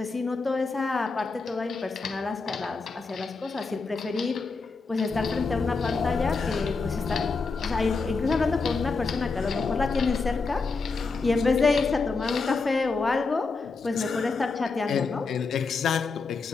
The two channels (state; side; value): quieter; right; 4.3 dB